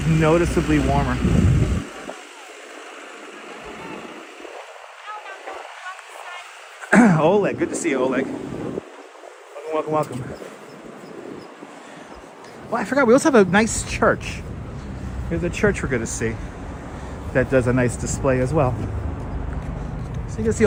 noticeably warmer. Oleg, good to see you, Oleg. Welcome. Well, I forgot, we also have a nice church. Here's a church we're going to see that does a nice display as well. So you can see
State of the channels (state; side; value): identical; both; correlation 1.00